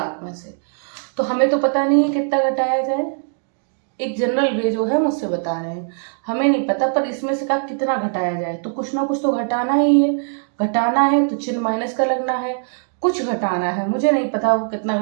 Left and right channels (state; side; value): silent; left; digital silence